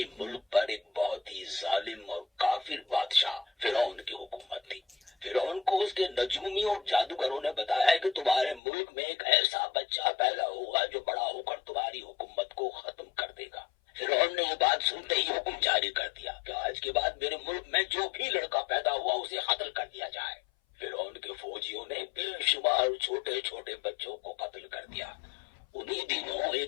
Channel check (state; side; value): drops out; right; at 8.6 s